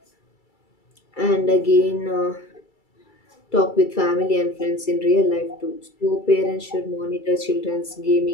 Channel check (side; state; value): right; late; 2.3 ms